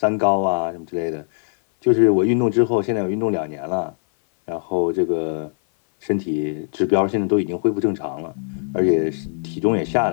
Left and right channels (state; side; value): silent; right; 61 dB below the other